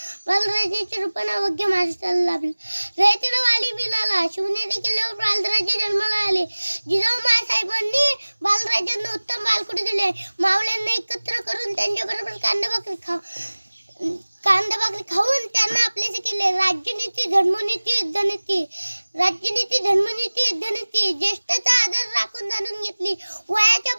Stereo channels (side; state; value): both; inverted; correlation -1.00